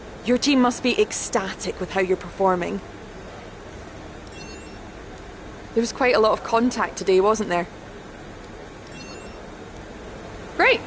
Your team must be ecstatic with how you're performing. There was quite a lot of contact today, wasn't there? Great.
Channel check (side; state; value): both; identical; correlation 1.00